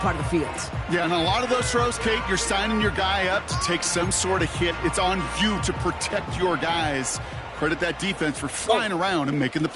of the field. Yeah, and a lot of those throws, Kate, you're signing your guy up to take some sort of hit. It's on you to protect your guys. Credit that defense for flying around and making the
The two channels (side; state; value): both; identical; correlation 1.00